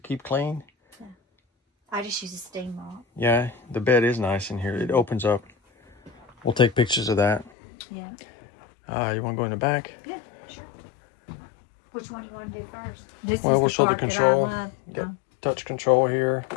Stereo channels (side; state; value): right; drops out; at 7.5 s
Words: keep clean. I just use a steam mop. Yeah, the bed is nice in here. It opens up. We'll take pictures of that. Yeah. You want to go in the back? Yeah, sure. Which one you want to do first? This Well, is we'll the show the part that I control. love. You got touch control here.